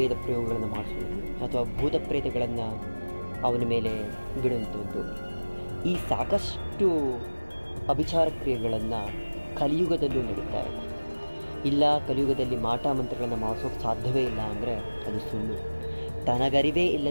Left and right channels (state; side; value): inverted; both; correlation -1.00